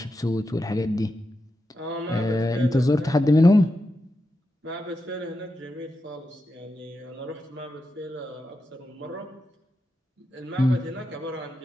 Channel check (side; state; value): both; normal; correlation 0.88